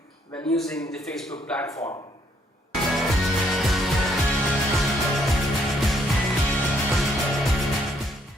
when using the Facebook platform.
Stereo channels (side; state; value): both; normal; correlation 0.69